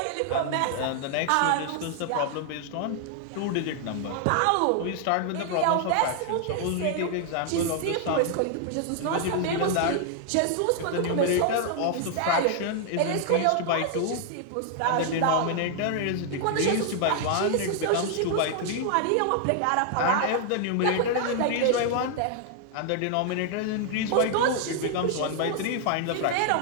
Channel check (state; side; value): different; both; correlation 0.00